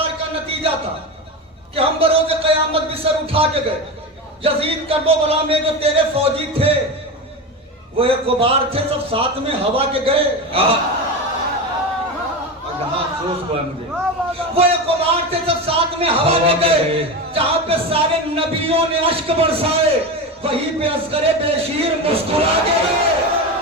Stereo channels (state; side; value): normal; both; correlation 0.21